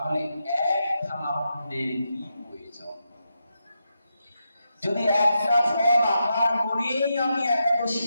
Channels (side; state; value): both; inverted; correlation -0.86